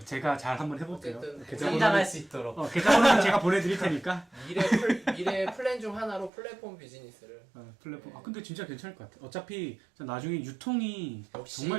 제가 잘 한번 해볼게요. 어쨌든 성장할 수 있도록. 계좌번호는 제가 보내드릴 테니까. 미래 플랜 중 하나로 플랫폼 비즈니스를. 플랫폼. 근데 진짜 괜찮을 것 같아. 어차피 나중에 유통이 역시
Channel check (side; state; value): left; drops out; at 6.3 s